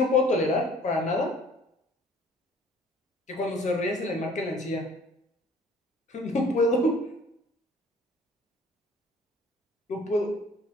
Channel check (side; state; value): both; normal; correlation 0.53